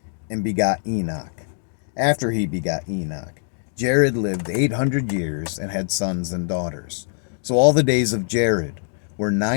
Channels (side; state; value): right; silent; 64 dB below the other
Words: and begot Enoch. After he begot Enoch, Jared lived 800 years and had sons and daughters. So all the days of Jared were